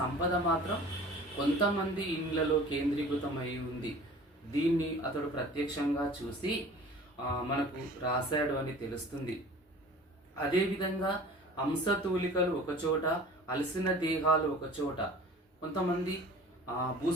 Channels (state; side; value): normal; both; correlation 0.44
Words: సంపద మాత్రం కొంతమంది ఇండ్లలో కేంద్రీకృతమై ఉంది. దీన్ని అతడు ప్రత్యక్షంగా చూసి మనకు రాశాడు అని తెలుస్తుంది. అదేవిధంగా హంసతూలికలు ఒకచోట, అలసిన దేహాలు ఒకచోట. కొంతమంది